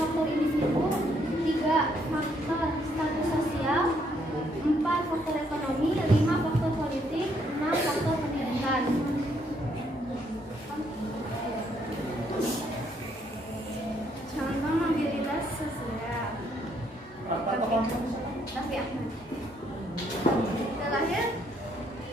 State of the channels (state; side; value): normal; both; correlation 0.71